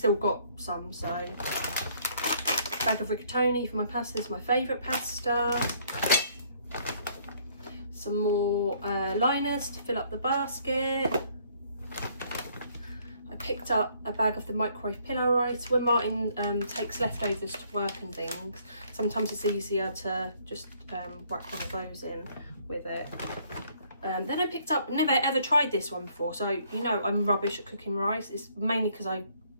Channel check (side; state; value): both; inverted; correlation -0.64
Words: got some, so. Bag of rigatoni for my pasta. This is my favourite pasta. Some more liners to fill up the basket. I picked up a bag of the microwave pillow rice. When Martin takes leftovers to work and things, sometimes it's easier to just whack one of those in with it. Then I picked up, never ever tried this one before, so you know I'm rubbish at cooking rice. It's mainly because I